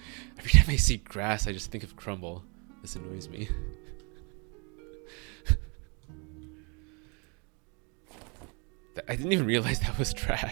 Every time I see grass, I just think of crumble. This annoys me. I didn't even realize that was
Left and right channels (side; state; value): left; quieter; 33.9 dB